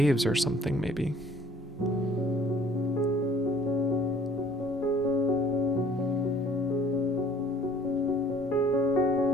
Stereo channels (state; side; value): normal; both; correlation 0.54